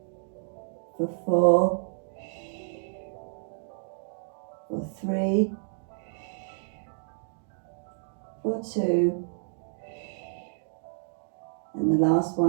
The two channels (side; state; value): left; silent; digital silence